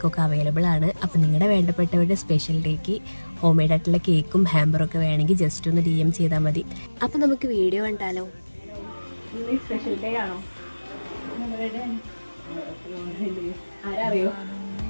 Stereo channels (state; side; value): inverted; both; correlation -1.00